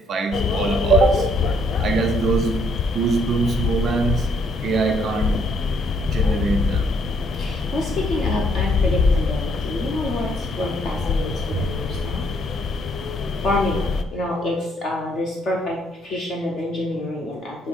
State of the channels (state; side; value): normal; both; correlation 0.69